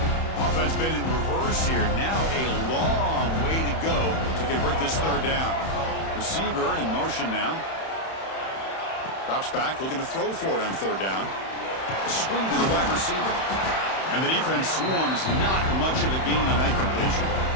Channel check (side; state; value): right; late; 31 ms